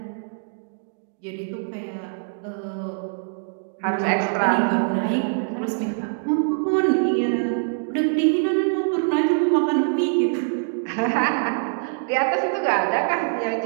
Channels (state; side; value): silent; left; digital silence